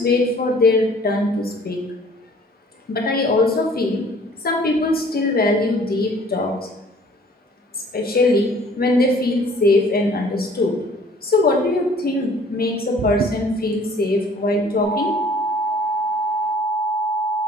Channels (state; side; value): normal; both; correlation 0.54